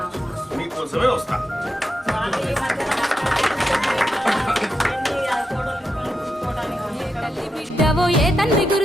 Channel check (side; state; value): both; normal; correlation 0.86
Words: మీకోసమే వస్తా. బిడ్డవో ఏ తండ్రి